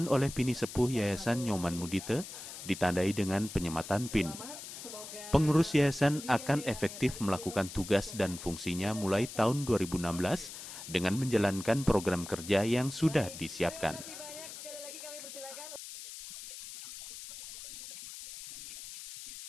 oleh Pini Sepuh Yayasan Nyoman Mudite, ditandai dengan penyematan PIN. Pengurus yayasan akan efektif melakukan tugas dan fungsinya mulai tahun 2016 dengan menjalankan program kerja yang sudah disiapkan. Artinya untuk ke depan kita menginginkan bahwa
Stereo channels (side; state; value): left; noise; hiss, 11 dB below the sound